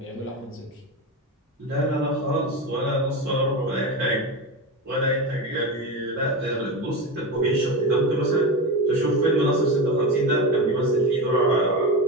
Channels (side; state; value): both; normal; correlation 0.20